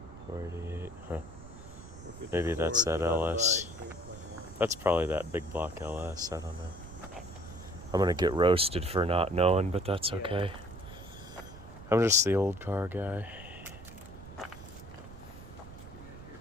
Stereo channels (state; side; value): noise; right; rumble, 15 dB below the sound